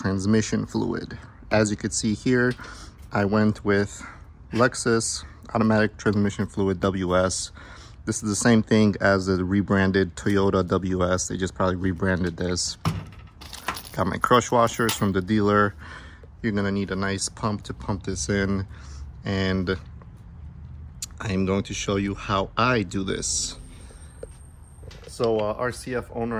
fluid. As you can see here, I went with Lexus automatic transmission fluid WS. This is the same thing as the rebranded Toyota WS. They just probably rebranded this. Got my crush washers from the dealer. You're gonna need a nice pump to pump this in, and I am going to show you how I do this. So RCF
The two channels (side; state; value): both; identical; correlation 1.00